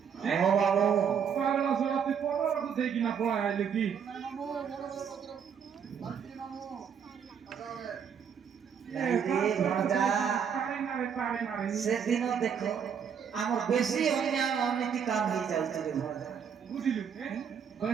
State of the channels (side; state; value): left; quieter; 7.4 dB